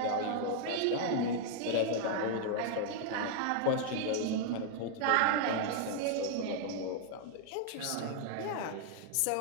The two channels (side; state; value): both; different; correlation 0.00